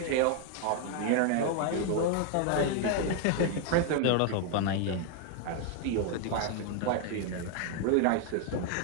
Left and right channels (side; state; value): both; different; correlation 0.01